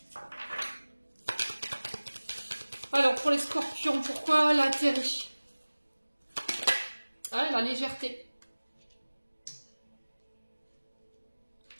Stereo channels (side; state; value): both; inverted; correlation -1.00